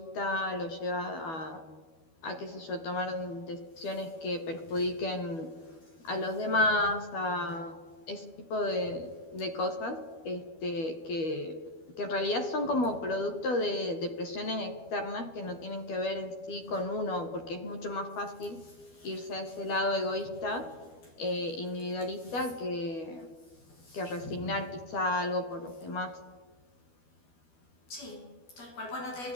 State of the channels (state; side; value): late; right; 12 ms